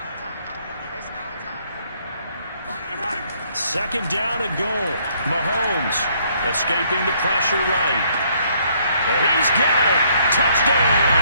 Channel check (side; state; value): both; inverted; correlation -0.67